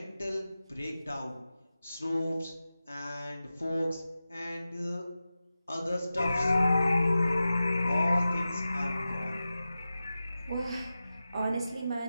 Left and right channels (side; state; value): both; inverted; correlation -0.94